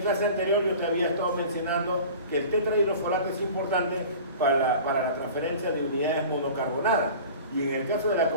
clase anterior yo te había estado mencionando que el tetrahidrofolato es importante para la transferencia de unidades monocarbonadas. Y en el caso de la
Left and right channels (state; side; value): inverted; both; correlation -0.40